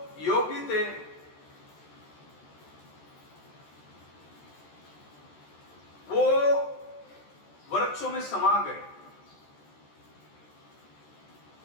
योगी थे, वो वृक्षों में समा गए।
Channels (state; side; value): late; right; 14 ms